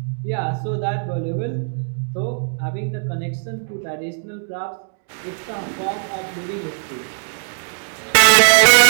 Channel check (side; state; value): left; silent; digital silence